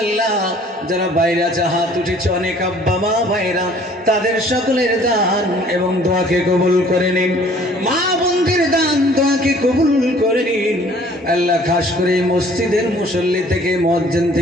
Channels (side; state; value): both; normal; correlation 0.55